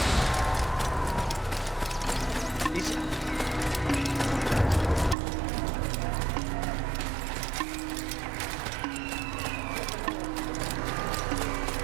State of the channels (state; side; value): drops out; left; at 5.2 s